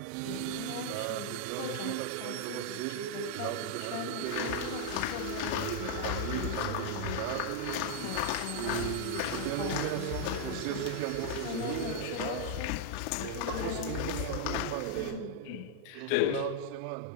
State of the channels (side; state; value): both; different; correlation -0.01